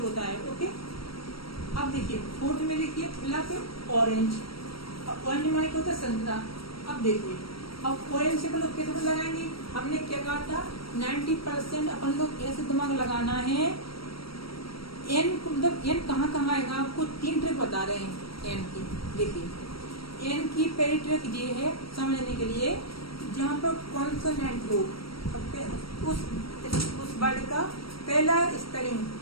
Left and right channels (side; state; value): right; late; 0.75 ms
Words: होता है। ओके, अब देखिए फोर्थ में देखिए ऑरेंज। ऑरेंज माने क्या होता है? संतरा। अब देखिए अब ऑरेंज से अपन लोग कैसे लगाएंगे? हमने क्या कहा था? 90% अपन लोग ऐसे दिमाग लगाना है। एन मतलब एन कहाँ आएगा? आपको 3 ट्रिक बता रहे हैं एन की। देखिए एन की पहली ट्रिक ये है समझने के लिए, जहाँ पर कॉन्सोनेंट हो, उस वर्ड का पहला स्पेलिंग